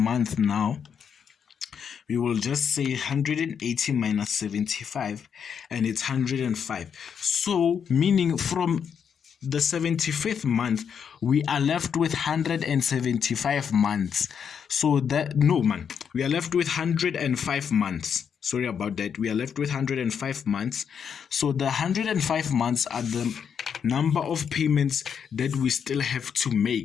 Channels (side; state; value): right; quieter; 7.3 dB